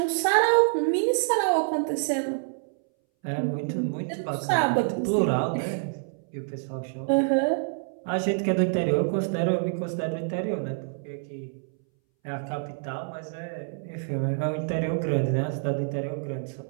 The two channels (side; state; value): left; silent; 60 dB below the other